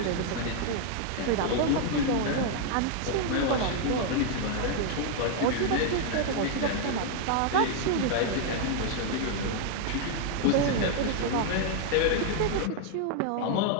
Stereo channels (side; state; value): both; different; correlation 0.00